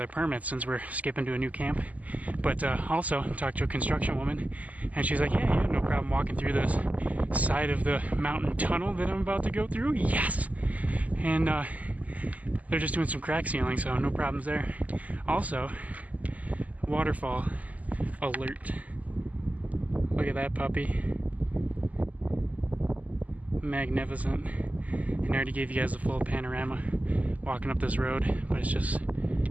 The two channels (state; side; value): late; left; 0.074 ms